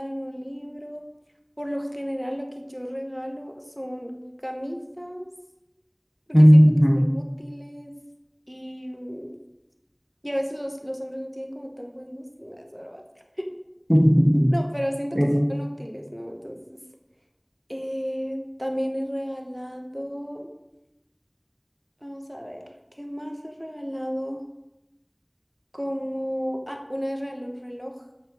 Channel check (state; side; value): identical; both; correlation 1.00